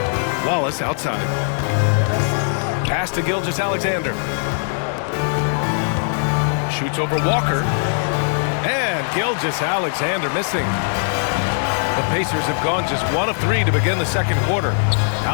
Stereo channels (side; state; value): right; silent; digital silence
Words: Wallace outside. Pass to Gilgeous-Alexander. Shoots over Walker. And Gilgeous-Alexander missing. The Pacers have gone just 1 of 3 to begin the second quarter.